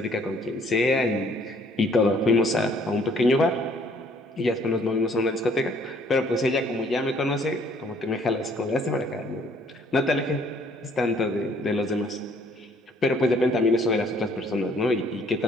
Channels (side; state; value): both; normal; correlation 0.62